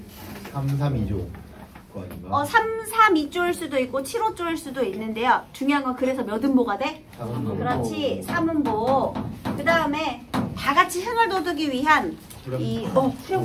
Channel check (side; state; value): both; identical; correlation 1.00